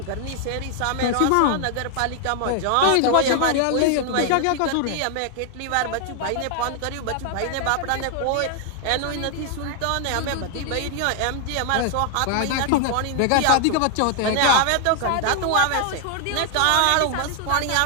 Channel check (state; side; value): different; both; correlation 0.00